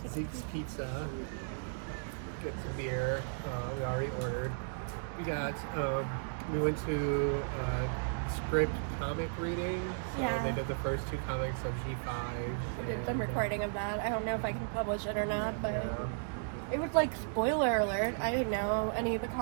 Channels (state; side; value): silent; left; digital silence